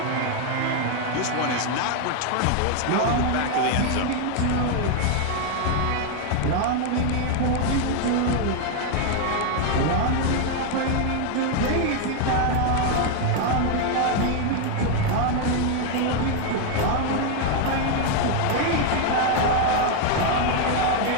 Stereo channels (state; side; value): different; both; correlation 0.01